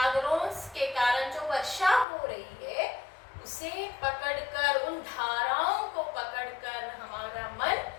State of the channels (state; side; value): drops out; right; at 2.1 s